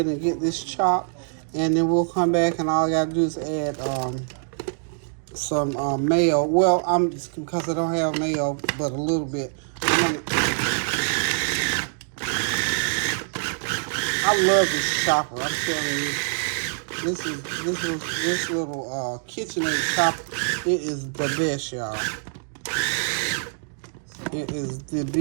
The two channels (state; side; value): silent; left; digital silence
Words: and get this chopped, and then we'll come back, and all I got to do is add some mayo. Well, because I don't have mayo, but a little bit. I love this chopper. I'm telling you, this little KitchenAid chopper. It is the best, y'all. It is the